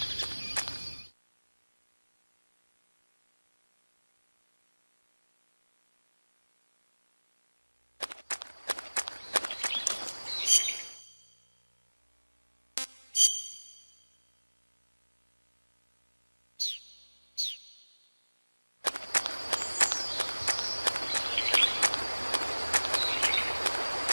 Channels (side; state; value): both; inverted; correlation -1.00